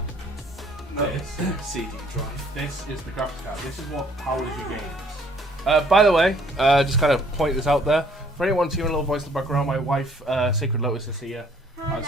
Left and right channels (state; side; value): normal; both; correlation 0.60